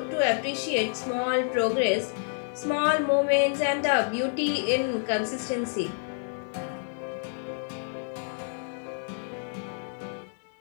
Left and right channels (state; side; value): silent; right; digital silence